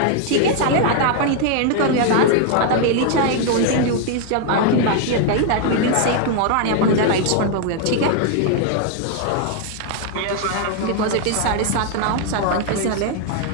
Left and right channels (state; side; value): different; both; correlation 0.00